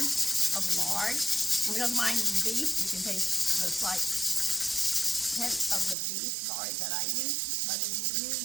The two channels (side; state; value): left; drops out; at 6.0 s